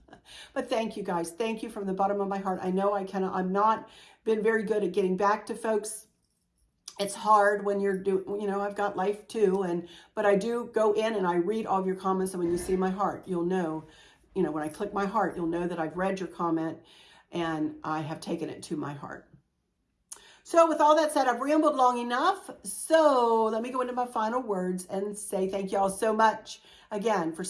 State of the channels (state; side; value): identical; both; correlation 1.00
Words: But thank you guys. Thank you from the bottom of my heart. I know I'm not been very good at getting back to folks. It's hard when you're doing, you know, I've got life too. But I do go in and I read all of your comments. And when you see my heart, you'll know, you know, when I click my heart, you'll know that I've read your comment and I have taken it to my heart. So with all that said, I've rambled long enough. So let me go into my final words and say thank you all so much again for